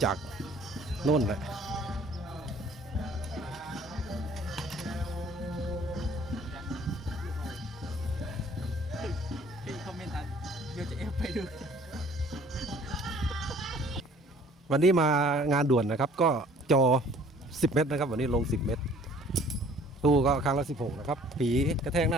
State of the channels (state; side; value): normal; both; correlation 0.54